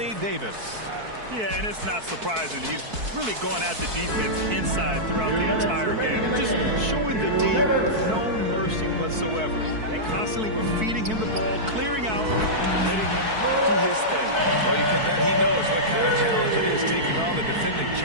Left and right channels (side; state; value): left; late; 4.6 ms